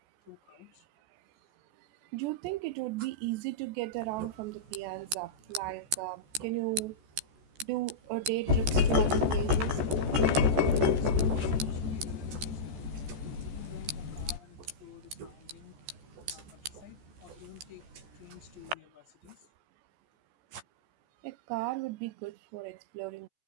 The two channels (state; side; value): late; left; 14 ms